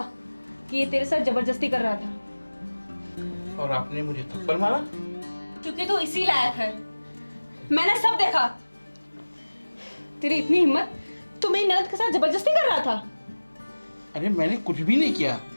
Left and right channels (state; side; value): inverted; both; correlation -1.00